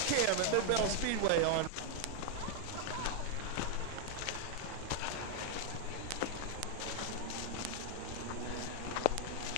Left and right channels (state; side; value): different; both; correlation 0.00